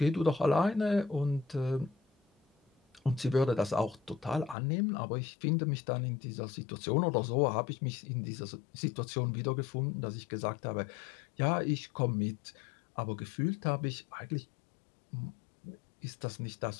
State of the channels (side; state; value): right; drops out; at 4.5 s